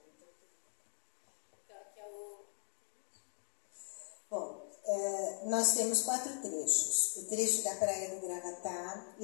Bom, nós temos 4 trechos. O trecho da Praia do Gravatá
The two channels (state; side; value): silent; right; 51 dB below the other